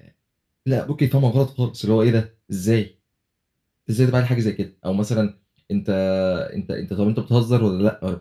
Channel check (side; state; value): both; identical; correlation 1.00